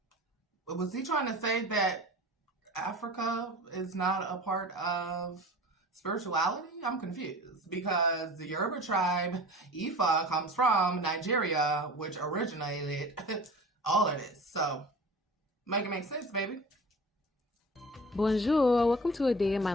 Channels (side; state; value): both; normal; correlation 0.39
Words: Was he trying to say that Africa is not a part of spirituality? I'm confused because the Yoruba tribe, Ifa, comes from Nigeria, which originated all of this. So, make it make sense, baby. Bonjour, welcome to a day in my